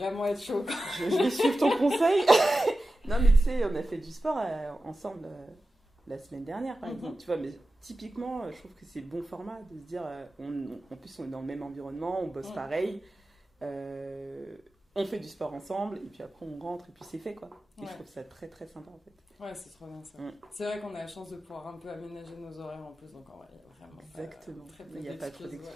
être chaud, quoi. Je vais suivre ton conseil. Non, mais tu sais, on a fait du sport ensemble la semaine dernière, par exemple. Tu vois, mais typiquement, je trouve que c'est le bon format de se dire, en plus, on est dans le même environnement, on bosse pareil, on fait du sport ensemble, et puis après, on rentre, et puis c'est fait, quoi. Et je trouve ça très, très sympa, en fait. Ouais, c'est trop bien ça. C'est vrai qu'on a la chance de pouvoir un peu aménager nos horaires en plus, donc en vrai, il y a vraiment exactement. Il n'y a pas trop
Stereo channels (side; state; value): both; normal; correlation 0.94